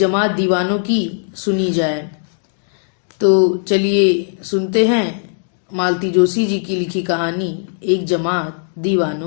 दीवानों की सुनी जाए। तो चलिए सुनते हैं मालती जोशी जी की लिखी कहानी एक जमात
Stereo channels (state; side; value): silent; right; digital silence